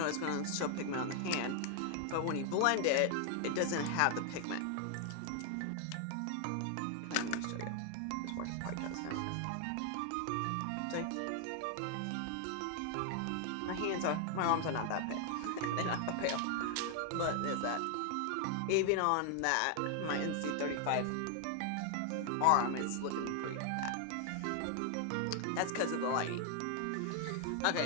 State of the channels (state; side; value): different; both; correlation 0.00